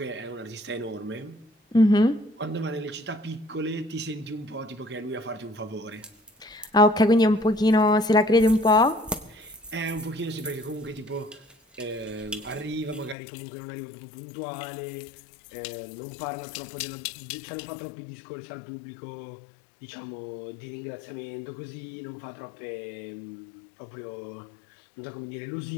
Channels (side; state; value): right; drops out; at 13.2 s